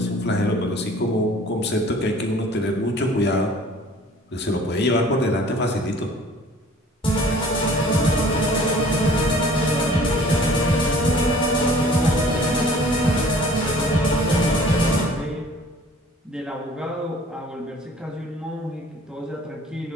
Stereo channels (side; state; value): both; normal; correlation 0.50